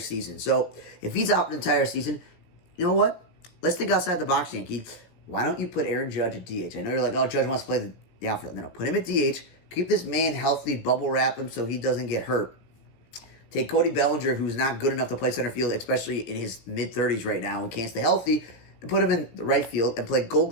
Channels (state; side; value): late; right; 17 ms